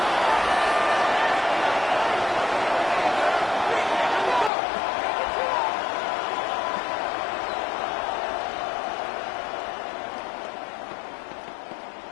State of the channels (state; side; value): drops out; right; at 4.5 s